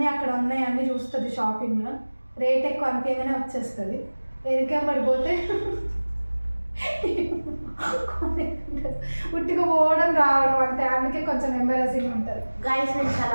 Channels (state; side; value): inverted; both; correlation -1.00